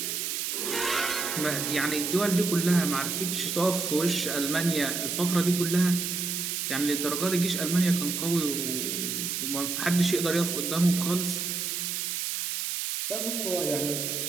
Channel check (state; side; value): noise; right; hiss, 2 dB below the sound